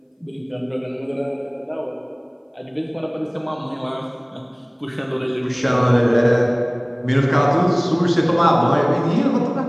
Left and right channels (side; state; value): both; identical; correlation 1.00